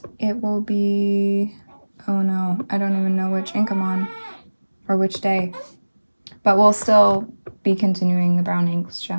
it will be, oh no, I don't even know which ink I'm on or which day. But we'll still be continuing the brown inks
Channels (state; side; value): inverted; both; correlation -1.00